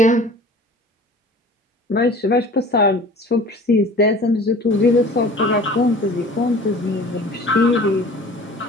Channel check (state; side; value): normal; both; correlation 0.44